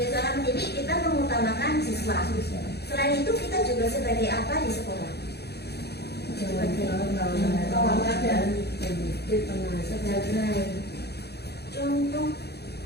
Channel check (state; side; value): late; right; 0.48 ms